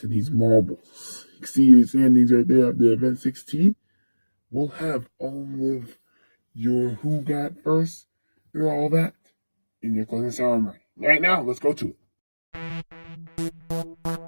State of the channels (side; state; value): both; inverted; correlation -1.00